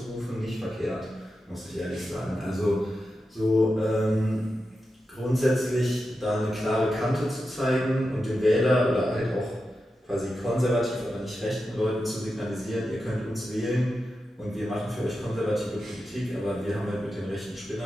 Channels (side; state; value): both; normal; correlation 0.90